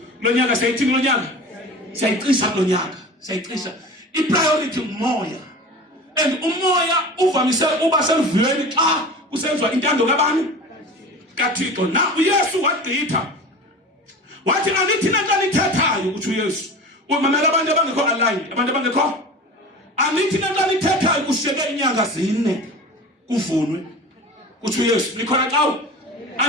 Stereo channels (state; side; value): normal; both; correlation 0.35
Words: Lo nyaka sayithini lo nyaka? Sayicisa lo nyaka. Sayicisa. I-priority umoya. And umoya uvamise uba selvuyeni xa kusenziwa intando kabani? kaThixo. Na uYesu wagqitha. Wathi anithi nanto nithethayo kuthi uYesu. Umamela abantu abangekho aligned, abantu abangekho. Anithi nanto nithethayo kushiyeke inyanga 4 kuvunwe. Kuthi uYesu likhona xa